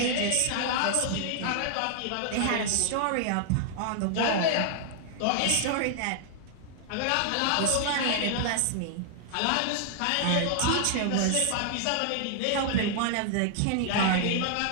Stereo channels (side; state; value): both; different; correlation 0.00